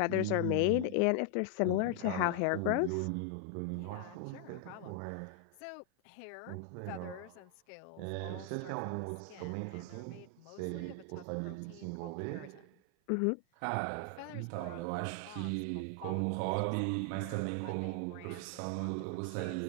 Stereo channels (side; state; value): both; different; correlation 0.00